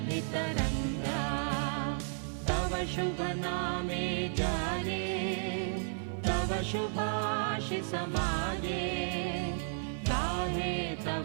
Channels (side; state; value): left; silent; digital silence